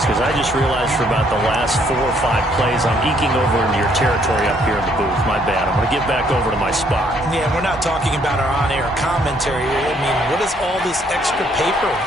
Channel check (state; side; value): normal; both; correlation 0.67